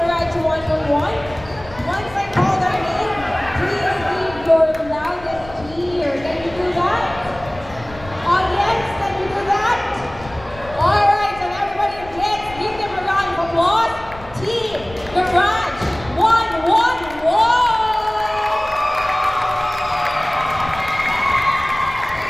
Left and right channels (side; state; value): left; noise; rumble, 17 dB below the sound